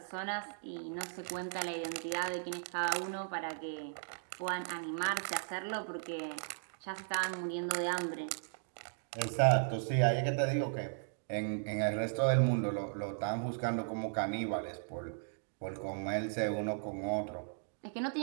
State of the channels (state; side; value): silent; left; digital silence